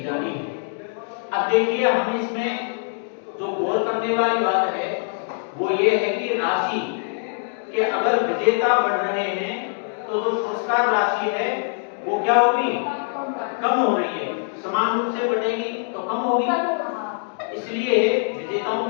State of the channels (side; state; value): right; silent; 62 dB below the other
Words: जानी है। अब देखिए, हम इसमें जो गौर करने वाली बात है वो ये है कि राशि के अगर विजेता बढ़ रहे हैं तो जो पुरस्कार राशि है वो क्या होगी, कम हो रही है। समान रूप से बढ़ेगी तो कम होगी, इसलिए विजेताओं